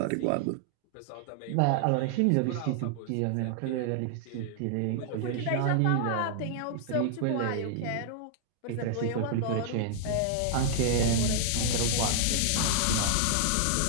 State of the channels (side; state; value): both; different; correlation -0.01